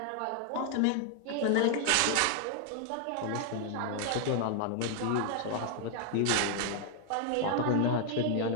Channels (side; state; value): both; different; correlation 0.00